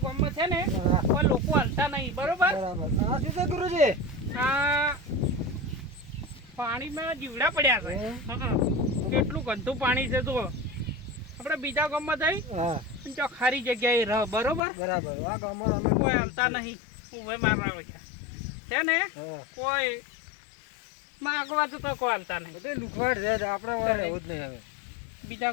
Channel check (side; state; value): right; drops out; at 14.6 s